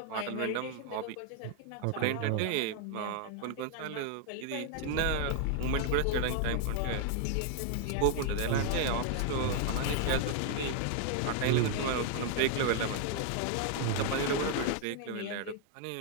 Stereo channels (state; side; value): different; both; correlation 0.00